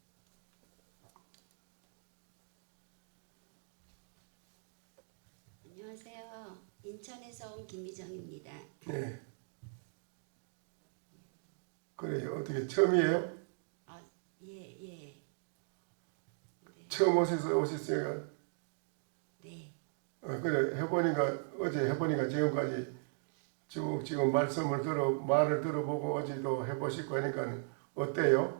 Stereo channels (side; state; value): left; silent; digital silence